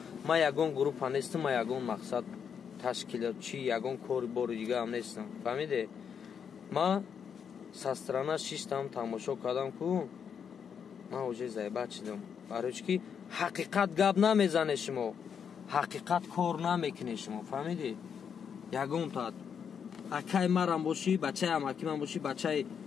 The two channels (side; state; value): right; quieter; 7.3 dB